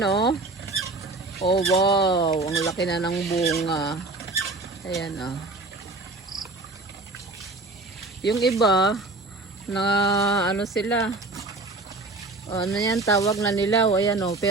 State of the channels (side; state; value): left; quieter; 3.2 dB